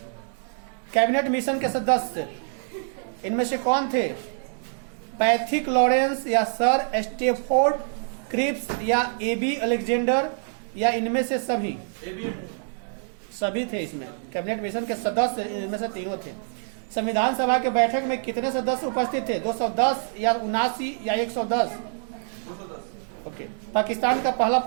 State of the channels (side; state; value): left; silent; digital silence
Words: कैबिनेट मिशन के सदस्य इनमें से कौन थे? पैथिक लॉरेंस या सर स्टेफोर्ड क्रिप्स या एबी अलेक्जेंडर या इनमें से सभी? सभी थे इसमें। कैबिनेट मिशन के सदस्य इनमें से तीनों थे। संविधान सभा के बैठक में कितने सदस्य उपस्थित थे? 210 या 79 या 110? 210। ओके। पाकिस्तान का पहला